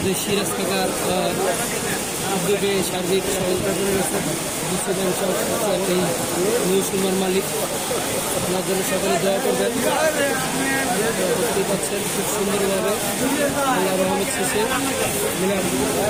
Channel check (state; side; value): noise; left; rumble, 20 dB below the sound